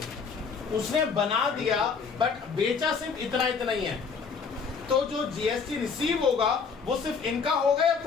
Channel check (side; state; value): right; quieter; 5.5 dB